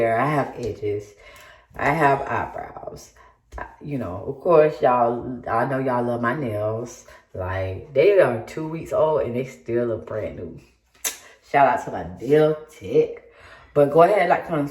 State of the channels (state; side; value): identical; both; correlation 1.00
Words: I have edges, I have eyebrows. You know, of course, y'all, I know y'all love my nails. Like, they are 2 weeks old and they still look brand new. Shout out to my nail tech. But go ahead, like, comment,